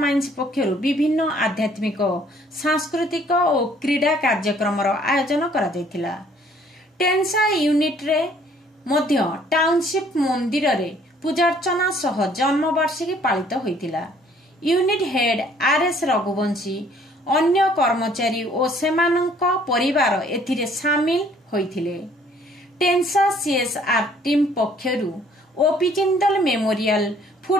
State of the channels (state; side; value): normal; both; correlation 0.60